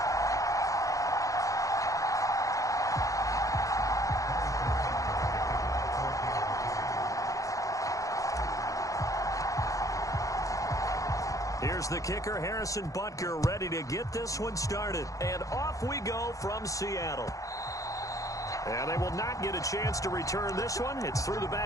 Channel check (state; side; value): late; right; 0.16 ms